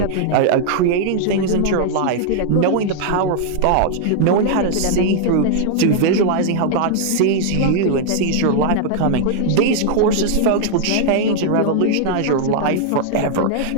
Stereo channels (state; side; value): different; both; correlation -0.01